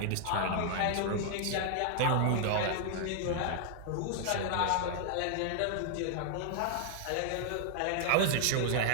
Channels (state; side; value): different; both; correlation -0.01